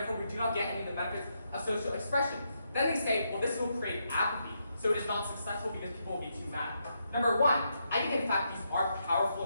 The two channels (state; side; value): inverted; both; correlation -0.81